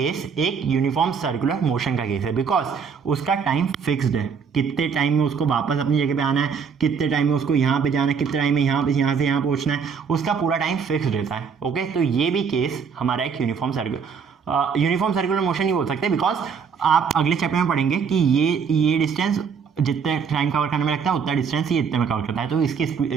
एक यूनिफॉर्म सर्कुलर मोशन का केस है, बिकॉज उसका टाइम फिक्स्ड है, कितने टाइम में उसको वापस अपनी जगह पे आना है, कितने टाइम में उसको यहाँ पे जाना है, कितने टाइम में यहाँ पे यहाँ से यहाँ पहुँचना है, उसका पूरा टाइम फिक्स्ड रहता है। ओके, तो ये भी केस हमारा एक यूनिफॉर्म सर्कुलर मोशन ही बोल सकते हैं, बिकॉज आप अगले चैप्टर में पढ़ेंगे कि ये डिस्टेंस जितने टाइम कवर करने में लगता है उतना डिस्टेंस ये इतने में कवर करता है। तो इसकी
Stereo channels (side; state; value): left; quieter; 6.3 dB